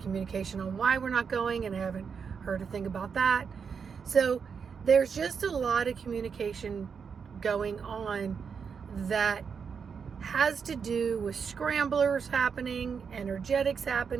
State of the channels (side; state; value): left; quieter; 6.2 dB